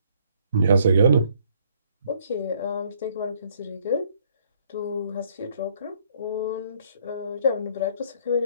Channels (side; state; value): both; inverted; correlation -0.64